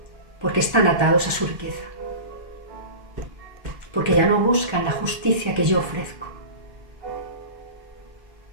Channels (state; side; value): late; left; 1.8 ms